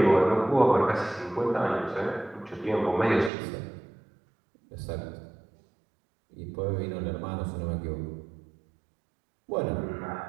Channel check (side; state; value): left; drops out; at 3.3 s